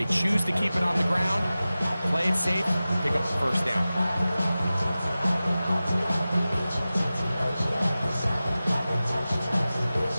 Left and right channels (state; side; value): inverted; both; correlation -0.96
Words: choose to keep it on the ground, play it safe, pick up the first down.